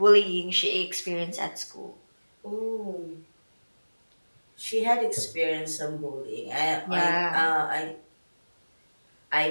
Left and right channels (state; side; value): inverted; both; correlation -1.00